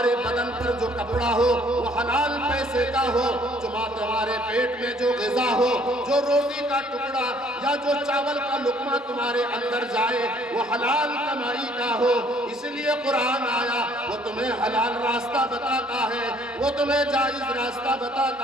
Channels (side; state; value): both; normal; correlation 0.61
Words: بدن پر جو کپڑا ہو وہ حلال پیسے کا ہو، تمہارے پیٹ میں جو غذا ہو، جو روٹی کا ٹکڑا یا جو چاول کا لقمہ تمہارے اندر جائے وہ حلال کمائی کا ہو. اس لیے قرآن آیا، وہ تمہیں حلال راستہ بتاتا ہے، وہ تمہیں جائز راستہ